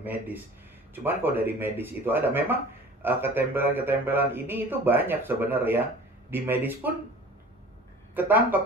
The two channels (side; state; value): both; normal; correlation 0.43